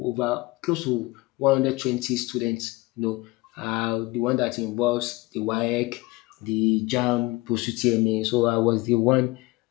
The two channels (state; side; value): quieter; right; 21.9 dB